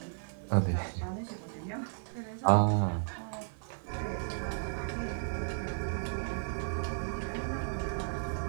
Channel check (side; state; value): left; silent; 55 dB below the other